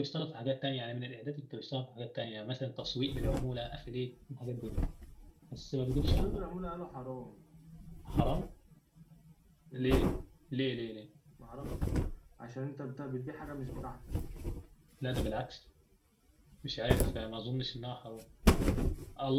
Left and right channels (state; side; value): identical; both; correlation 1.00